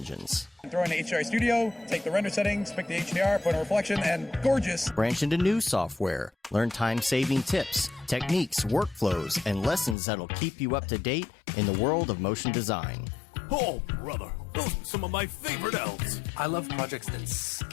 Throw in the HDR Studio, take the render settings, pick the HDR, put in a reflection, and gorgeous. Branch into new software. Learn time-saving tips, techniques, workflows, and lessons that'll keep you up to date in the world of motion design. Oh, brother, those are some of my favorite elves. I love projects that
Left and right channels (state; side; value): drops out; right; at 10.0 s